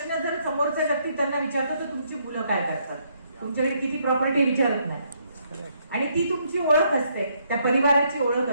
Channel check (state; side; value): inverted; both; correlation -0.72